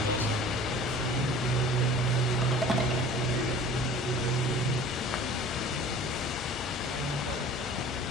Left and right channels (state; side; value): normal; both; correlation 0.44